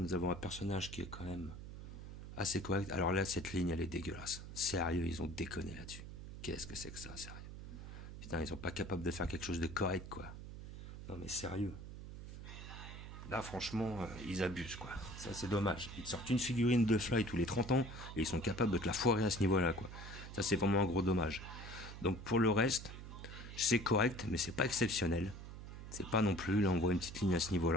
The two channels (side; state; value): right; noise; hum, 11 dB below the sound